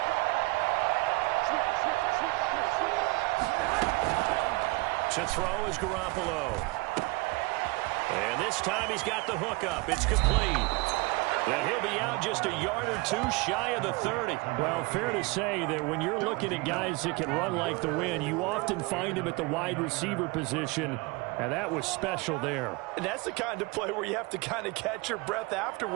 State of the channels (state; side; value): quieter; left; 24.5 dB